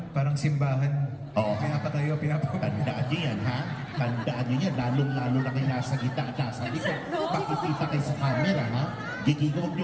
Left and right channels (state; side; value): identical; both; correlation 1.00